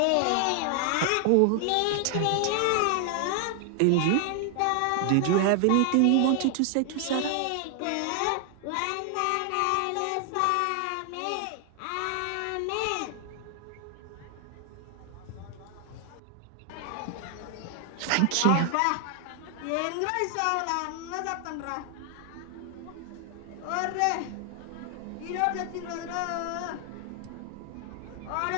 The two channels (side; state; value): both; different; correlation 0.00